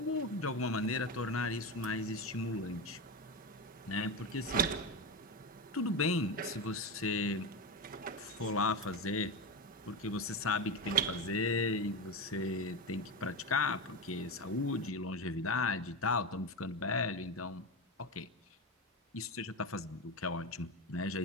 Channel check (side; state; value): both; normal; correlation 0.16